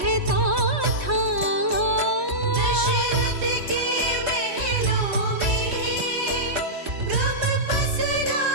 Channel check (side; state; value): left; late; 3.1 ms